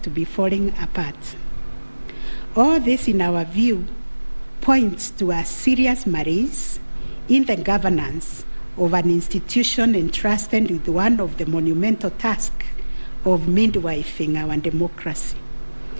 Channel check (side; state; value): both; inverted; correlation -1.00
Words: to be falling apart. All this, in our view, points to a serious malaise in the governance of an institution entrusted with one of the monumental tasks of midwifing our democracy,